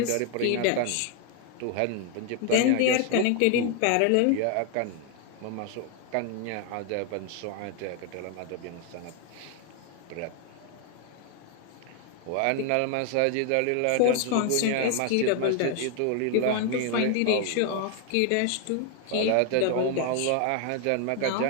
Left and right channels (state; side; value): different; both; correlation 0.00